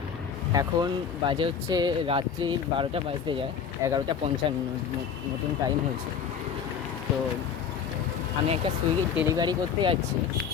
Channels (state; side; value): quieter; right; 7.2 dB